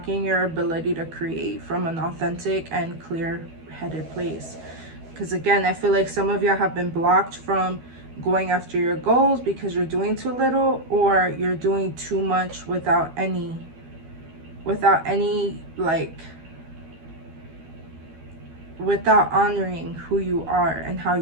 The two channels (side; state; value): left; late; 12 ms